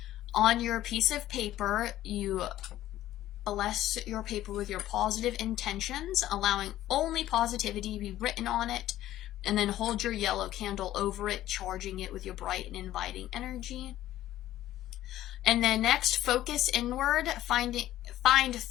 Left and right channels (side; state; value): right; quieter; 13.8 dB